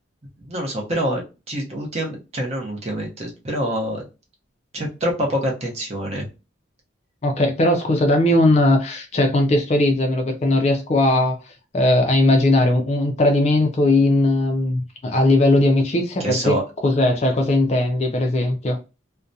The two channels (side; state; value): both; normal; correlation 0.64